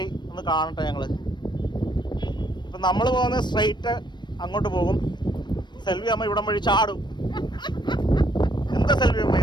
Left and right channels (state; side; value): late; right; 0.22 ms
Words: ഒന്ന് കാണട്ടെ ഞങ്ങള്. ഇപ്പം നമ്മൾ പോകുന്നത് സ്ട്രെയിറ്റ് അങ്ങോട്ട് പോകും. സെൽവിയമ്മ ഇവിടം വഴി ചാടും. എന്താ സെൽവിയമ്മ